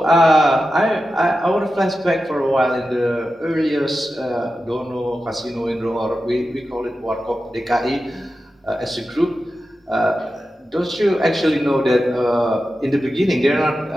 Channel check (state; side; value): normal; both; correlation 0.92